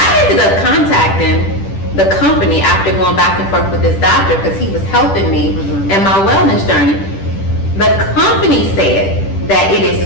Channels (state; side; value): late; right; 10 ms